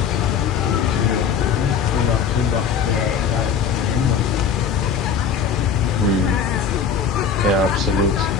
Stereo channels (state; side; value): quieter; right; 6.6 dB